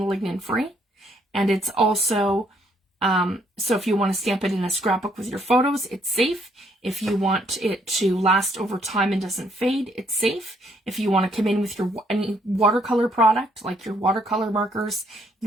lignin free. And it's also, so if you want to stamp it in a scrapbook with your photos, it's safe. If you want it to last over time and doesn't fade, it's safe. If you want to come in with your any watercolor product, like your watercolor markers,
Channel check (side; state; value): both; normal; correlation 0.69